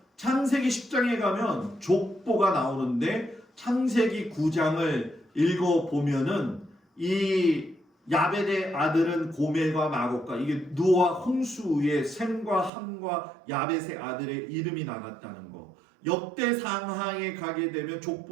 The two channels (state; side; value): drops out; left; at 12.7 s